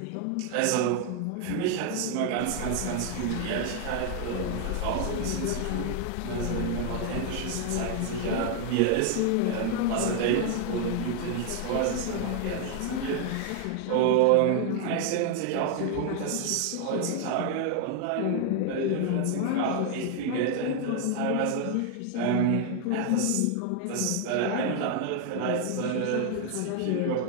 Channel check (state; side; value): different; both; correlation 0.01